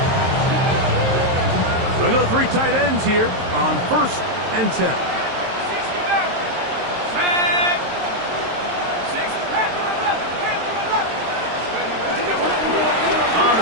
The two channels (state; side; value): late; left; 23 ms